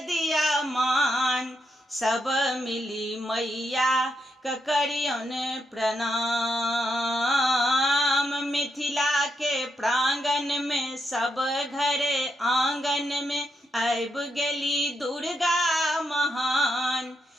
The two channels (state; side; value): normal; both; correlation 0.81